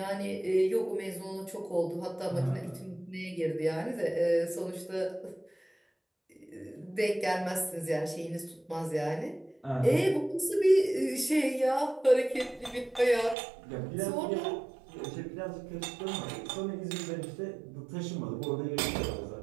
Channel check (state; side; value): drops out; left; at 13.4 s